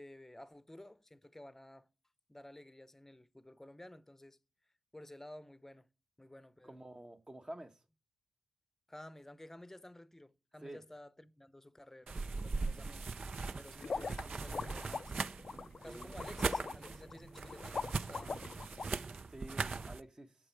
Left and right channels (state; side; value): normal; both; correlation 0.88